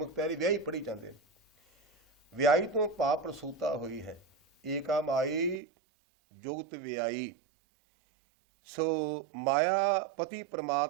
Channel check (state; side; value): drops out; left; at 5.6 s